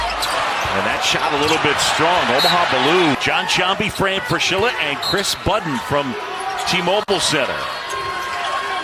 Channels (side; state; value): both; identical; correlation 1.00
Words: And that shot a little bit strong. Omaha Ballou. John Sciambi, Fran Fraschilla, and Chris Budden from T-Mobile Center.